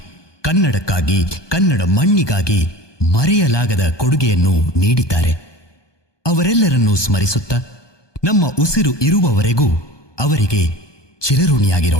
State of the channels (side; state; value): right; late; 1.2 ms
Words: ಕನ್ನಡಕ್ಕಾಗಿ, ಕನ್ನಡ ಮಣ್ಣಿಗಾಗಿ ಮರೆಯಲಾಗದ ಕೊಡುಗೆಯನ್ನು ನೀಡಿದ್ದಾರೆ. ಅವರೆಲ್ಲರನ್ನೂ ಸ್ಮರಿಸುತ್ತಾ ನಮ್ಮ ಉಸಿರು ಇರುವವರೆಗೂ ಅವರಿಗೆ